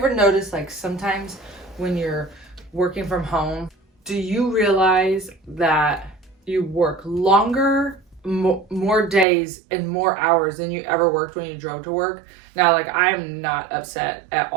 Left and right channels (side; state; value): left; drops out; at 9.2 s